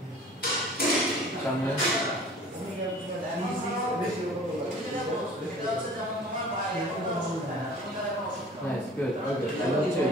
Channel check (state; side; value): normal; both; correlation 0.46